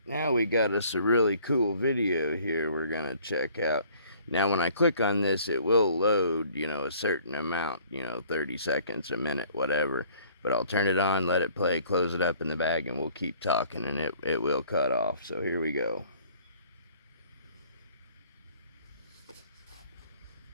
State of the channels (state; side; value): inverted; both; correlation -0.56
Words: now we got us a really cool video here we're gonna check out. Now when I click on this, it will load, you know, a certain amount, you know, 30 seconds, a minute, whatever. But I'll turn it on, let it play, close it up in the bag, and we'll keep talking, and it will cut off. So here we go.